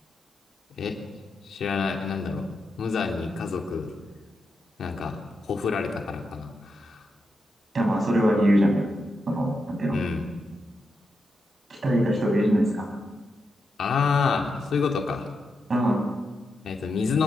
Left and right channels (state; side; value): normal; both; correlation 0.86